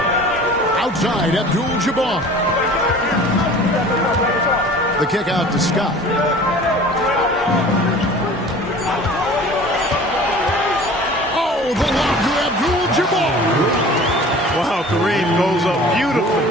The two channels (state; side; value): normal; both; correlation 0.44